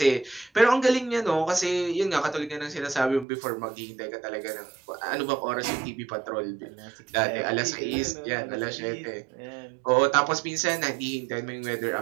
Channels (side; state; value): left; drops out; at 3.2 s